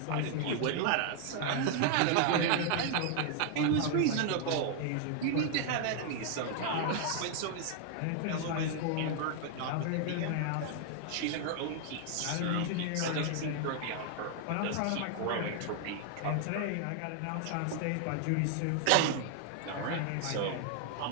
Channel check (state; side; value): different; both; correlation 0.00